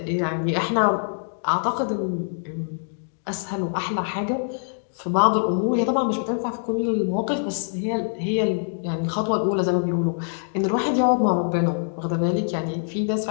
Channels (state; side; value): silent; right; digital silence